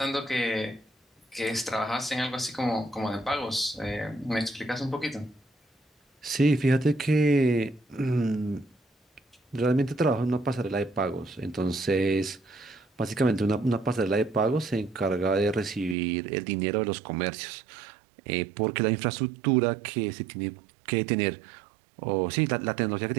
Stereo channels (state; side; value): drops out; left; at 16.0 s